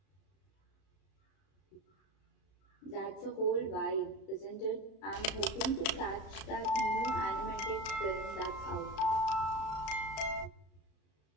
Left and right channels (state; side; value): late; right; 34 ms